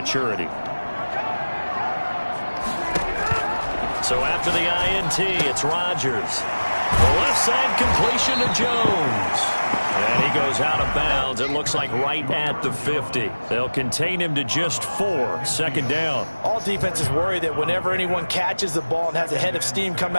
So after the INT, it's Rodgers. The left side completion to Jones. And he goes out of bounds. It looks like right at the 50. They'll contain him to just 4. 2nd down. All defenses worry that whenever anyone catches the ball and has a head of steam come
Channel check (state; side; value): inverted; both; correlation -1.00